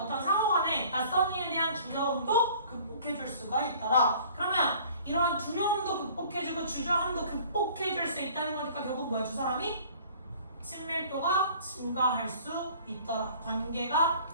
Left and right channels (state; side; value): inverted; both; correlation -0.50